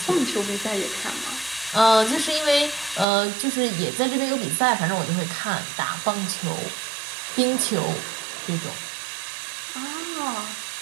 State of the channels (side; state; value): left; drops out; at 3.1 s